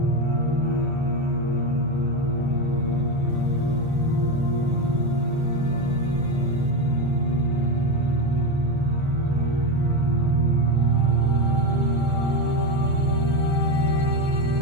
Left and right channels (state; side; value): late; left; 1.4 ms